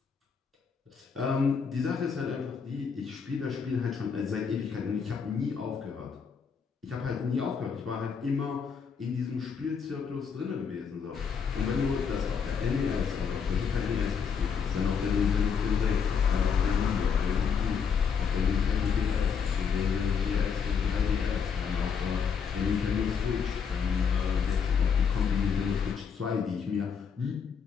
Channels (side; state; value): right; quieter; 6.4 dB